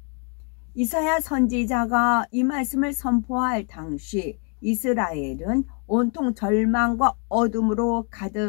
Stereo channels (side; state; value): right; quieter; 38.3 dB